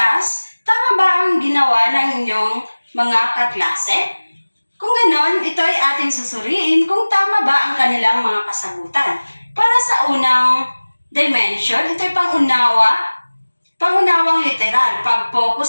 tama ba ang ginawa ng inyong mga kaklase? Kung ganon, ito ay ating susuriin kung tama ba ang kanilang mga kasagutan. Para sa unang dimension, ito ay pangunawang literal,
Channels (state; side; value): inverted; both; correlation -1.00